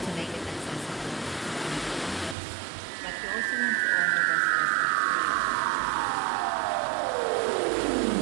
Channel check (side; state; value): left; drops out; at 2.4 s